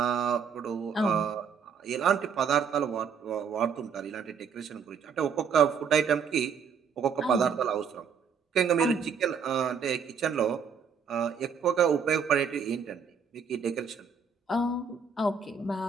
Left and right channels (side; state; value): left; quieter; 6.4 dB